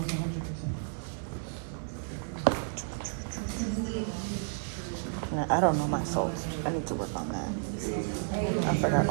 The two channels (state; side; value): silent; left; digital silence